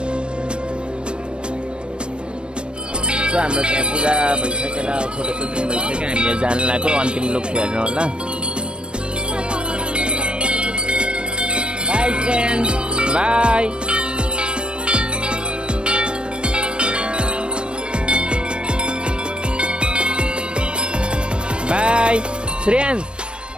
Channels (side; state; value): left; late; 0.056 ms